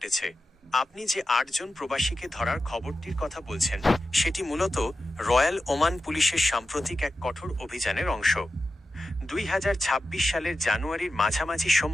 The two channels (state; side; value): normal; both; correlation 0.92